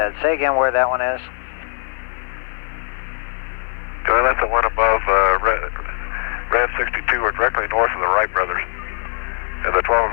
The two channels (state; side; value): silent; right; 59 dB below the other